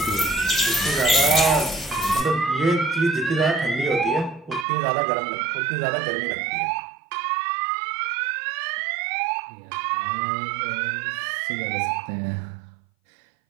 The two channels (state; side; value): drops out; left; at 4.7 s